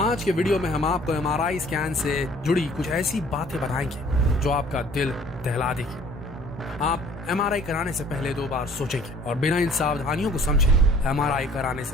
के वीडियो में हम आपको एमआरआई स्कैन से जुड़ी कुछ ऐसी बातें बताएंगे जो आपका दिल दहला देगी। आप एमआरआई कराने से पहले 2 बार सोचेंगे और बिना इन सावधानियों को समझे एमआरआई कराने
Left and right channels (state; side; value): normal; both; correlation 0.55